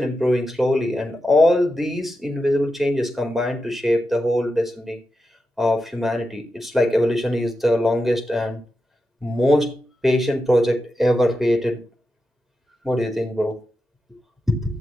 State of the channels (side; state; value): both; normal; correlation 0.89